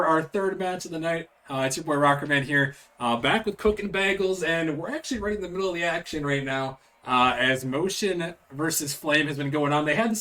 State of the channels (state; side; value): identical; both; correlation 1.00